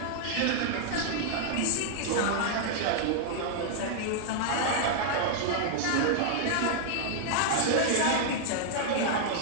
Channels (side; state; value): both; different; correlation -0.01